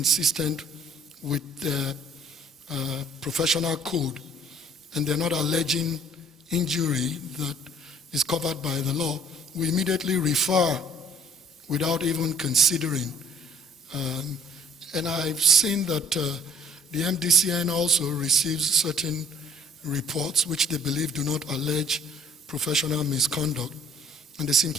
with the professional code, and they're not alleging injury that is covered by the law, we immediately refer without even considering. And I've seen that the MDCN also receives certain reports which they believe do not allege professional misconduct, and they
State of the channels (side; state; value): both; normal; correlation 0.56